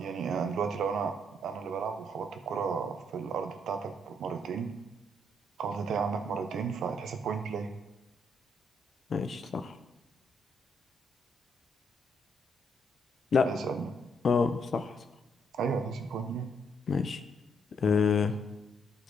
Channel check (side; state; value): both; normal; correlation 0.73